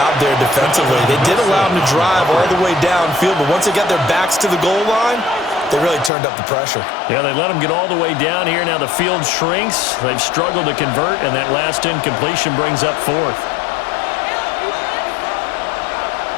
there defensively. They did allow him to drive all the way downfield, but once they got their backs to the goal line, they really turned up the pressure. Yeah, they let him get all the way down here. Now the field shrinks. They've struggled to convert, and that last incompletion brings up 4th.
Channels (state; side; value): drops out; right; at 6.1 s